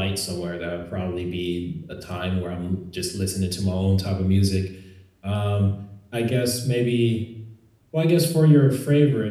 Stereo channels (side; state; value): both; identical; correlation 1.00